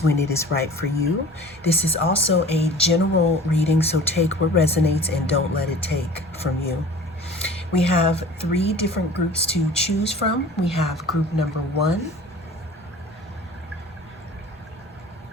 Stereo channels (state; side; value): normal; both; correlation 0.43